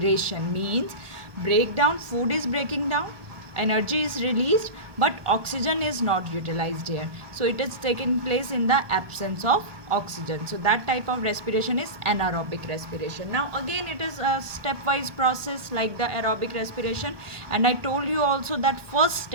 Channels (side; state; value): left; late; 1.2 ms